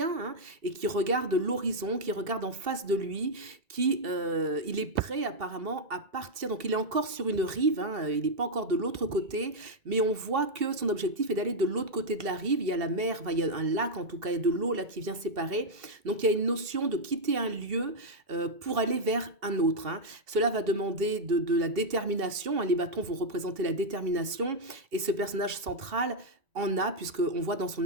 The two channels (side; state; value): left; late; 2.7 ms